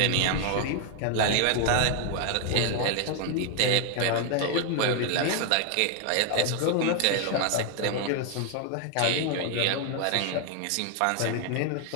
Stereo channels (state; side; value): different; both; correlation 0.00